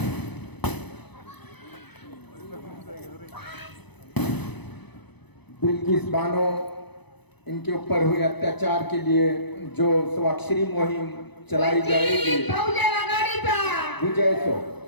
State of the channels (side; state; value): right; late; 0.99 ms